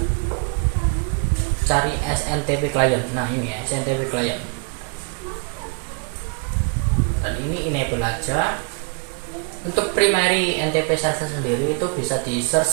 cari SNTP client. Nah, ini ya, SNTP client. Dan ini enable aja. Untuk primary NTP server sendiri itu bisa di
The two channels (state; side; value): quieter; left; 36.3 dB